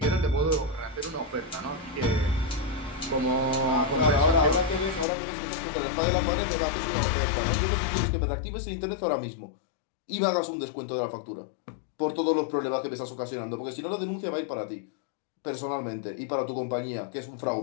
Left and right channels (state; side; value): drops out; right; at 5.1 s